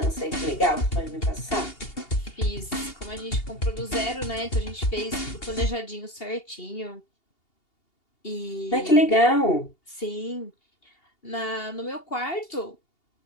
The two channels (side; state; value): right; late; 2.8 ms